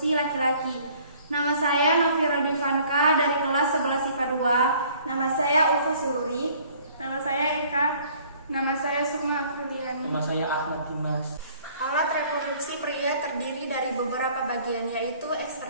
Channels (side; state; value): both; inverted; correlation -0.56